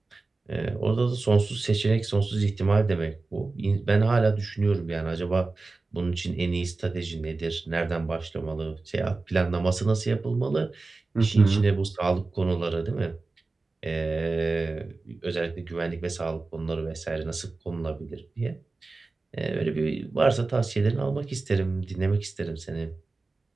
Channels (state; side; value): quieter; left; 3.6 dB